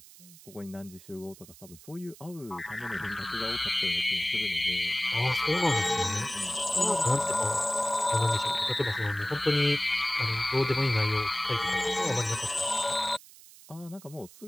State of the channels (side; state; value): right; noise; hiss, 21 dB below the sound